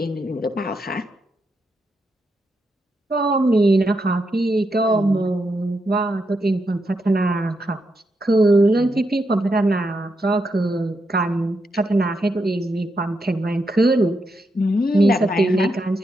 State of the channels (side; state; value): both; normal; correlation 0.83